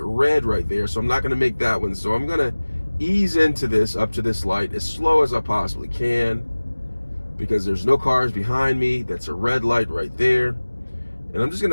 red right there, so I'm not gonna make that one. So I'm gonna ease into this, up to this light, as slow as I possibly can, because there's no cars behind me. That's a red light right there. And I'm just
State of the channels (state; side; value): inverted; both; correlation -1.00